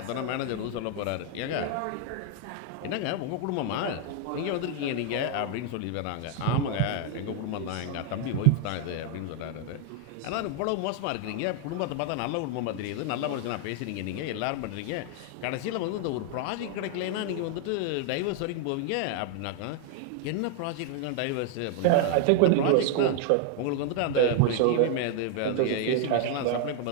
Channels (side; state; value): both; different; correlation 0.00